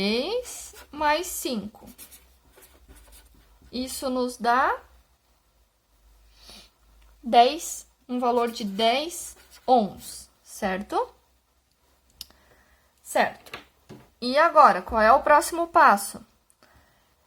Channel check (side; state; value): both; identical; correlation 1.00